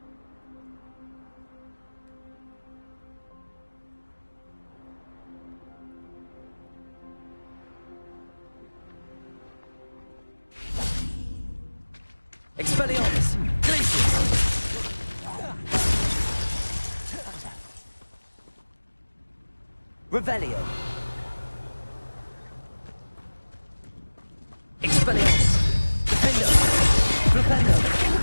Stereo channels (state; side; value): inverted; both; correlation -1.00